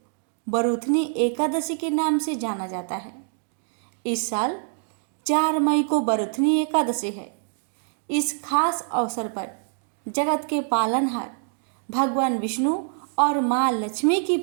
बरूथनी एकादशी के नाम से जाना जाता है। इस साल 4 मई को बरूथनी एकादशी है। इस खास अवसर पर जगत के पालनहार भगवान विष्णु और माँ लक्ष्मी की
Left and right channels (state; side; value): silent; left; 62 dB below the other